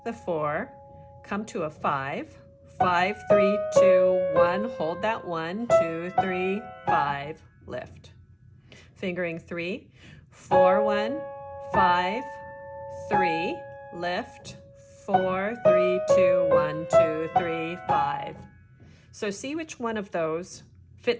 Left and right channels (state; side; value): identical; both; correlation 1.00